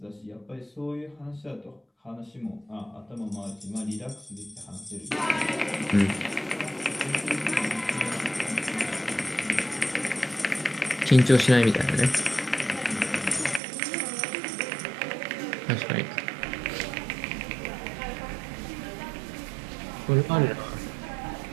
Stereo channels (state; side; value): drops out; left; at 13.6 s